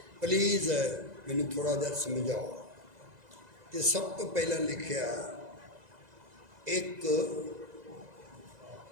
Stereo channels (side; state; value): left; late; 2.0 ms